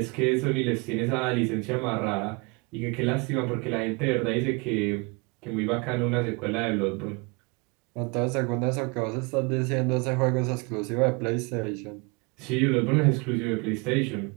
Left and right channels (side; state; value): left; quieter; 29.7 dB